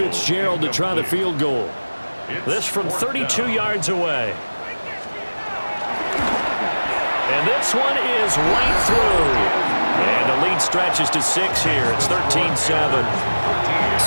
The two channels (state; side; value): inverted; both; correlation -1.00